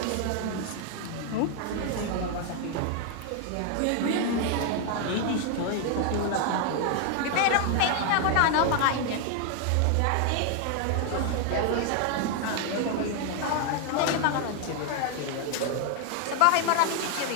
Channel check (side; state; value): both; different; correlation 0.00